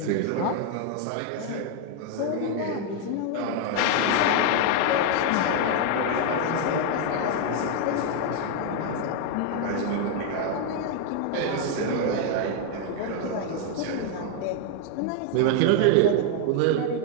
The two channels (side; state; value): both; different; correlation 0.00